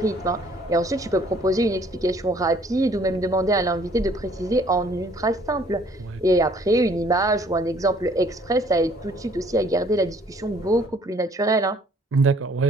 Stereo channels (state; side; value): normal; both; correlation 0.59